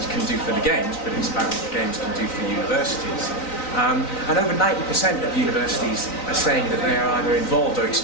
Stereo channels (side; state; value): right; late; 3.9 ms